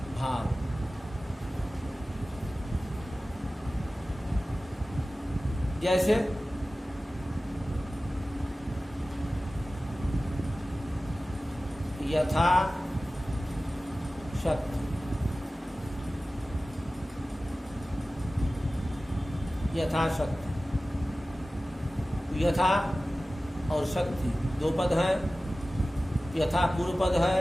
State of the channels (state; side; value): normal; both; correlation 0.96